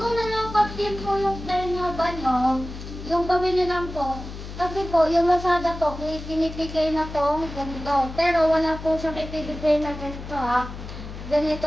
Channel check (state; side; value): noise; left; hum, 11 dB below the sound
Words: nalungkot din po yung Renova nyo, yung gawin nyo lang po, kasi po, yung Lazada po, may pinipigay na po ganito. Pero wala po siyang ipibigay na ganito ha.